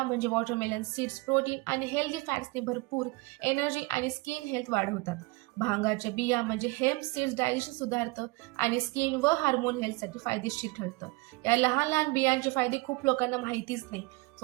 म्हणजे वॉटरमेलन सीड्स प्रोटीन आणि हेल्दी फॅट्सने भरपूर, एनर्जी आणि स्किन हेल्थ वाढवतात. भांगाच्या बिया म्हणजे हेम्प सीड्स डायजेशन सुधारतं आणि स्किन व हार्मोन हेल्थसाठी फायदेशीर ठरतं. या लहान लहान बियांचे फायदे खूप लोकांना माहितीच नाही.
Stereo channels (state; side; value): quieter; left; 24.7 dB